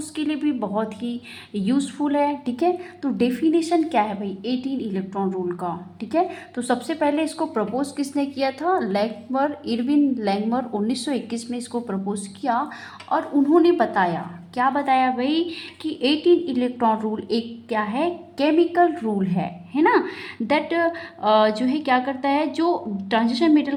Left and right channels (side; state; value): both; identical; correlation 1.00